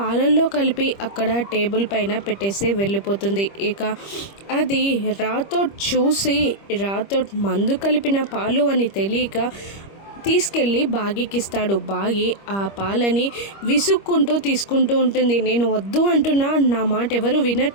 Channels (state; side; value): late; right; 25 ms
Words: కలిపి అక్కడ టేబుల్ పైన పెట్టేసి వెళ్ళిపోతుంది. ఇక అది రాథోడ్ చూసి, రాథోడ్ మందు కలిపిన పాలు అని తెలియక తీసుకెళ్ళి బాగీకిస్తాడు. బాగి ఆ పాలని విసుక్కుంటూ తీసుకుంటూ ఉంటుంది. నేను వద్దు అంటున్నా, నా మాట ఎవరు